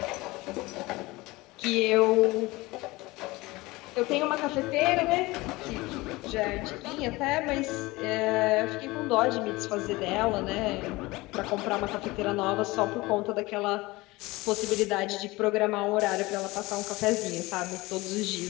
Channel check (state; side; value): quieter; right; 21.3 dB